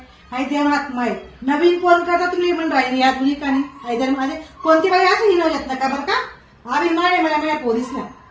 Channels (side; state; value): both; identical; correlation 1.00